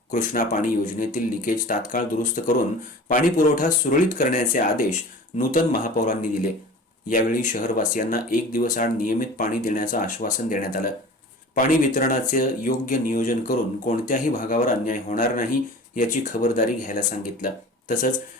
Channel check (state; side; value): normal; both; correlation 0.40